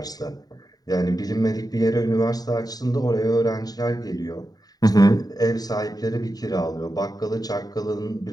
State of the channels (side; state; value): right; late; 0.18 ms